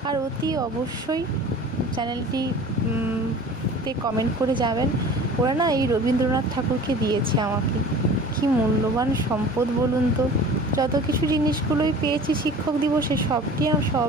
আর অতি অবশ্যই চ্যানেলটি তে কমেন্ট করে যাবেন। ওরা না এই রবীন্দ্রনাথ ঠাকুরকে দিয়েছে আমাকে, কি মূল্যবান সম্পদ বলুন তো। যত কিছু জিনিসগুলোই পেয়েছি শিক্ষক দিবসে,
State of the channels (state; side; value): normal; both; correlation 0.42